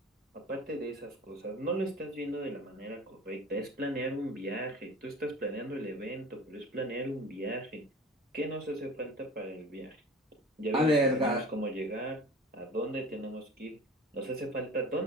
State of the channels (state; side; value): normal; both; correlation 0.40